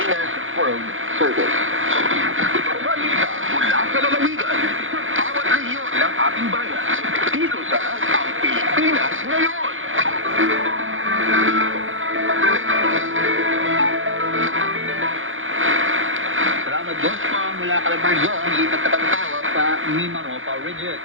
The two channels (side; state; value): left; late; 0.58 ms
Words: World Service. Balita mula sa lalawigan sa bawat rehiyon ng ating bayan. Dito sa Ang Pilipinas Ngayon. Salamat Diyos po mula Calabarzon, lipat na tayo sa Mimaropa Region.